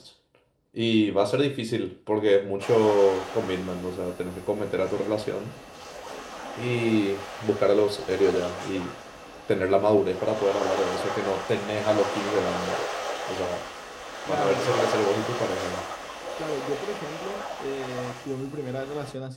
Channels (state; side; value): identical; both; correlation 1.00